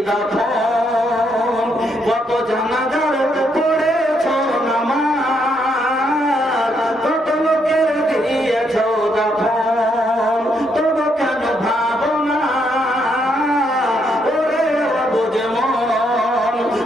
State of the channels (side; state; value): both; normal; correlation 0.75